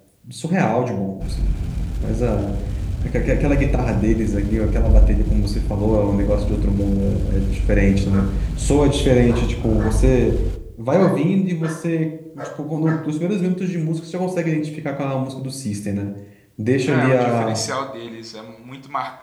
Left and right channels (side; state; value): both; identical; correlation 1.00